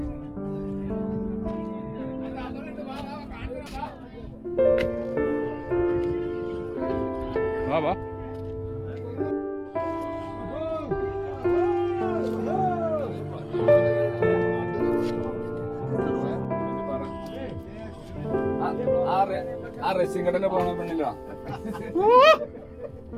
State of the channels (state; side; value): identical; both; correlation 1.00